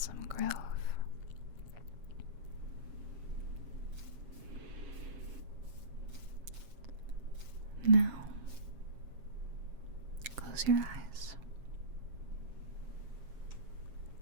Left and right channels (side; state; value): left; late; 7.4 ms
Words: grove. Now, close your eyes.